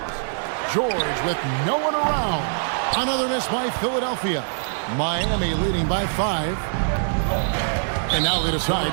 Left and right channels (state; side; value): silent; left; 56 dB below the other